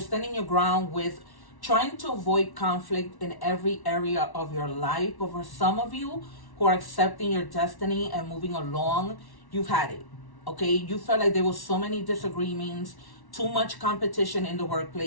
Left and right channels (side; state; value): right; late; 1.1 ms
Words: standing your ground with trying to avoid conflict in every area of your life. But for some of you who are accepting your destiny and moving along, you've had it. Okay, you felt like there was so many disagreements, too much competition in the